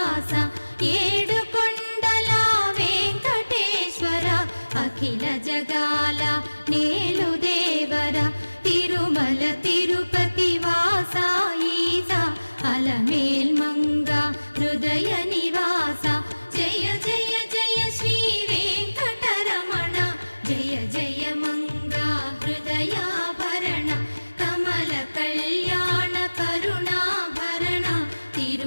ఏడుకొండల వెంకటేశ్వర అఖిల జగాల నేలు దేవర తిరుమల తిరుపతి వాస ఈస అలమేల్మంగ హృదయ నివాస జయ జయ జయ శ్రీ వెంకటరమణ జయ జయ మంగ హృదయాభరణ కమల కళ్యాణ కరుణాభరణ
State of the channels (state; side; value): inverted; both; correlation -1.00